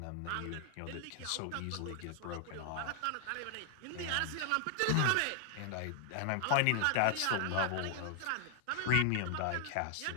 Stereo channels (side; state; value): both; different; correlation 0.00